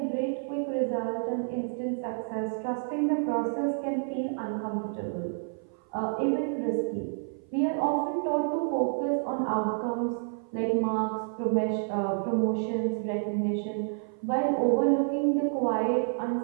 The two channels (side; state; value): left; silent; 56 dB below the other